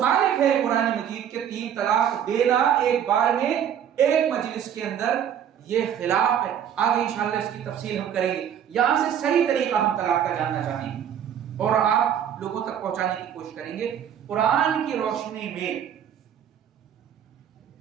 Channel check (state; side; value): quieter; left; 9.2 dB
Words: ہے قرآن مجید کے 3 طلاق دینا ایک بار میں ایک مجلس کے اندر، یہ خلاف ہے. آگے انشاءاللہ اس کی تفصیل ہم کریں گے. یہاں سے صحیح طریقہ ہم طلاق کا جاننا چاہیں گے اور آپ لوگوں تک پہنچانے کی کوشش کریں گے. قرآن کی روشنی میں